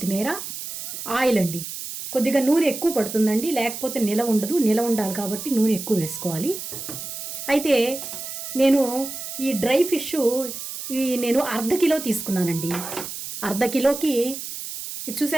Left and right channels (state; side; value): noise; right; hiss, 8 dB below the sound